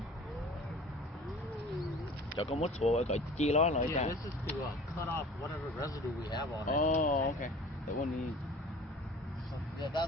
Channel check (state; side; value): normal; both; correlation 0.44